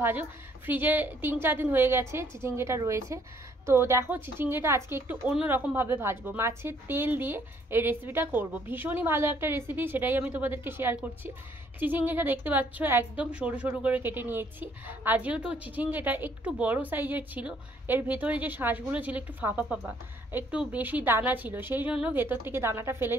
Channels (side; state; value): both; normal; correlation 0.65